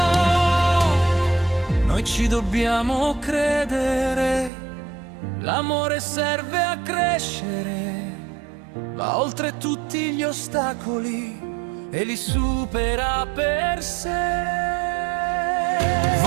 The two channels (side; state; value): left; drops out; at 4.5 s